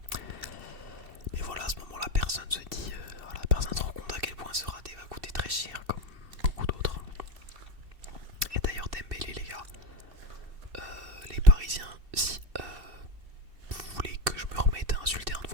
Mais voilà, à ce moment-là, personne se dit, voilà, personne ne se rend compte à quel point ce raté va coûter très cher, comme beaucoup d'autres. Et d'ailleurs, Dembélé, les gars, les Parisiens, si vous voulez que je me remette à insulter un de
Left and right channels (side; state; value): left; late; 2.7 ms